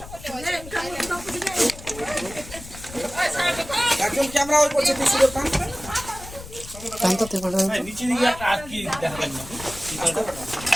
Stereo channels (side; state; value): left; noise; rumble, 15 dB below the sound